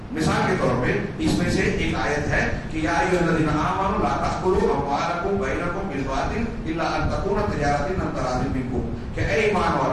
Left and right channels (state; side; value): identical; both; correlation 1.00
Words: مثال کے طور پہ اس میں سے ایک آیت ہے کہ یا ایھا الذین آمنوا لا تأکلوا اموالکم بینکم بالباطل الا ان تکون تجارۃ عن تراض منکم, کہ اے ایمان